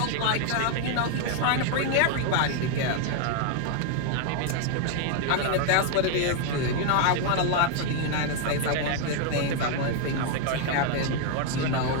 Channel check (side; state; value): both; different; correlation 0.00